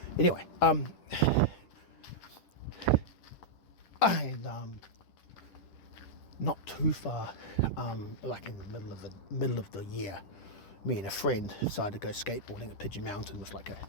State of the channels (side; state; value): right; late; 9.8 ms